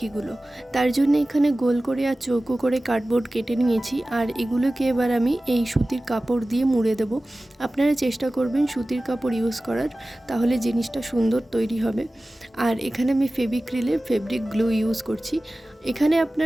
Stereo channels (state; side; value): normal; both; correlation 0.97